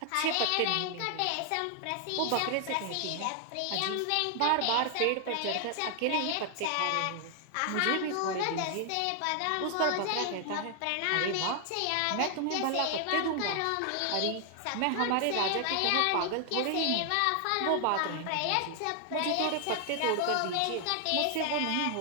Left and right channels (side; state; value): both; different; correlation 0.00